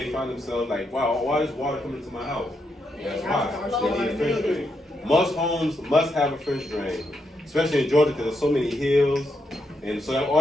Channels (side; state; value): both; normal; correlation 0.81